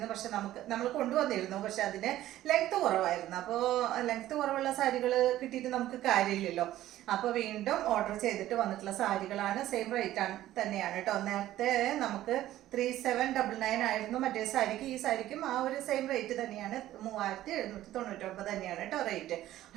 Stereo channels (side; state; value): left; quieter; 14.0 dB